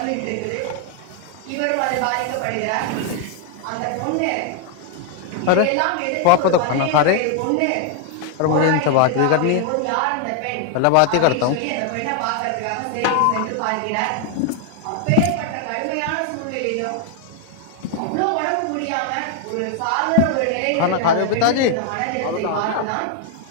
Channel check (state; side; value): different; both; correlation 0.00